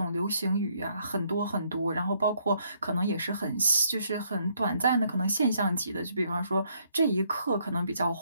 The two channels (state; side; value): inverted; both; correlation -0.70